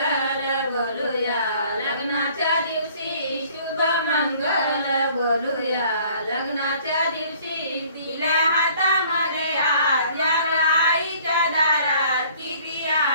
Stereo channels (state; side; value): inverted; both; correlation -0.55